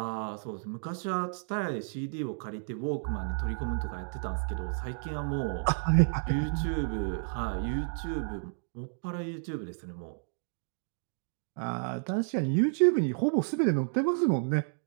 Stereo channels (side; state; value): left; silent; digital silence